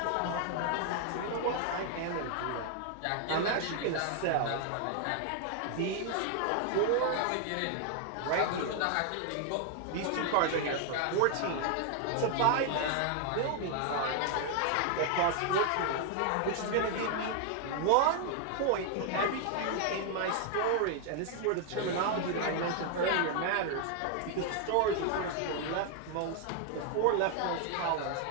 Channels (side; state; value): both; different; correlation 0.00